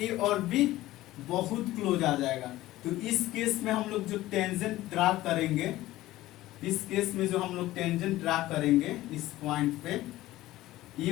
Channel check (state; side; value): quieter; right; 16.3 dB